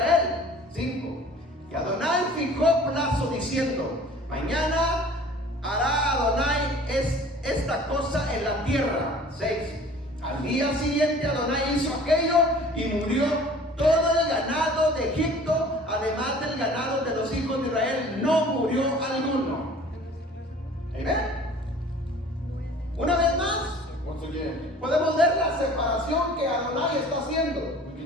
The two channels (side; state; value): both; normal; correlation 0.47